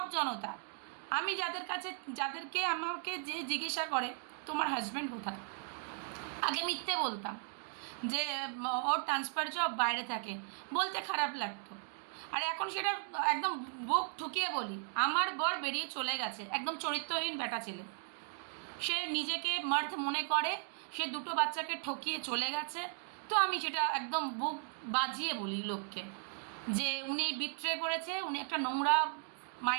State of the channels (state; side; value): silent; left; 53 dB below the other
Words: জনতা। আমি যাদেরকে আমাকে যে জিজ্ঞাসা করে তোমার হাজব্যান্ড কোথায়, আগে মিথ্যে বলতাম যে ওর ট্রান্সফার জব বাইরে থাকে, বলতে খারাপ লাগতো। আর এখন সেটা একদম বুক ঠুকিয়ে বলি, আমার বর বেরিয়ে চলে গেছে, একদম চরিত্রহীন বেটা ছেলে। সে নিজেকে মার্থ মনে করে, সে 2টো বাচ্চাকে ঠকিয়ে চলে গেছে। তো আমি সেটা একদম বুক বাজিয়ে বলি লোককে, যে উনি বিট্রে করেছে, উনি একটা নোংরা